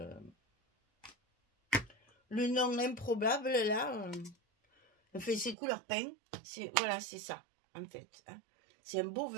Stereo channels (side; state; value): left; drops out; at 5.6 s